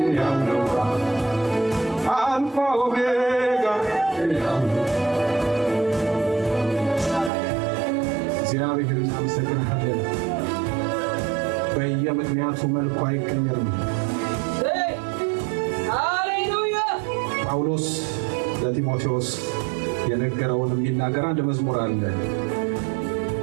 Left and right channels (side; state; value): left; drops out; at 7.3 s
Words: ያው ነው አልፋ ኦሜጋ ያው ነው። እግዚአብሔር እናመሰግናለን። በየምክንያቱ መልኩ አይቀየርም። ሃሌሉያ። ጳውሎስ ለጢሞቴዎስ የነገረውን የሚናገር አንድ መዝሙር አለ።